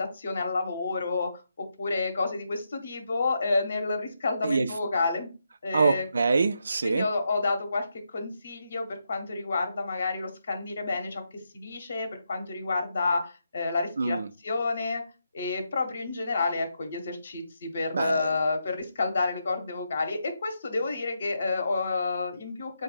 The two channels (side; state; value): both; inverted; correlation -0.82